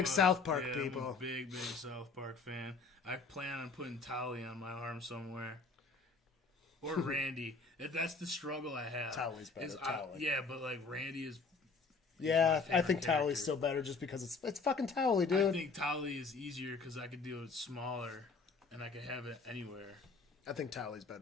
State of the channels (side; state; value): right; quieter; 4.3 dB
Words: a- South Park yeah, people. I'm a big South Park fan. I plan on putting Tolly on my arm somewhere. Or Randy. That's the struggle I have. Tolly's better, Is Tolly. yeah, but like Randy is. Yeah, my I favorite think Towley's character. still better just because it's fucking Towley, I dude. think Tolly is easier because I could do it smaller, and I could have it anywhere. I think Towley's